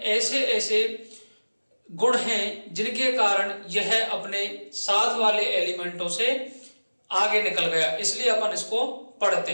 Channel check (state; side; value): inverted; both; correlation -1.00